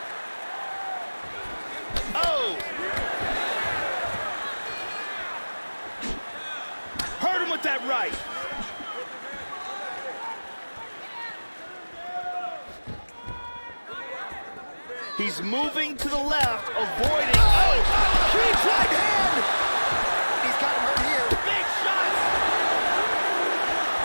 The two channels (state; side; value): inverted; both; correlation -1.00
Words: Oh! Hurt him with that right. He's moving to the left, avoiding. Oh! Huge right hand. He's got him hurt here. Big shots!